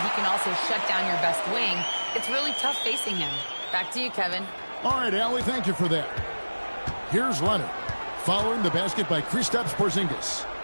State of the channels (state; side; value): inverted; both; correlation -1.00